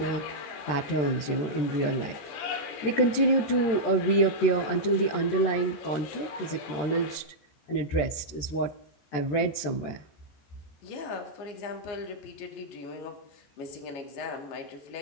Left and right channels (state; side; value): late; right; 14 ms